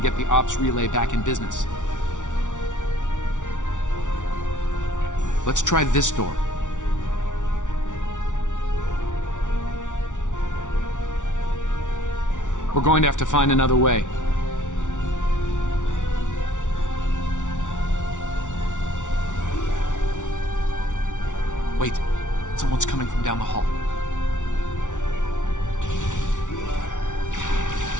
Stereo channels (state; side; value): late; right; 0.86 ms